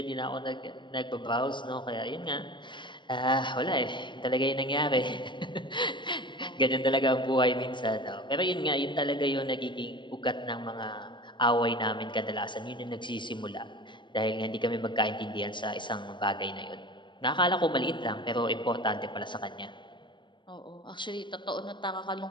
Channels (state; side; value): late; right; 0.23 ms